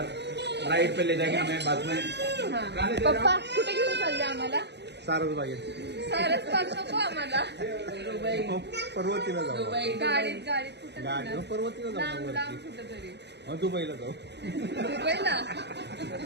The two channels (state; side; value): late; left; 0.50 ms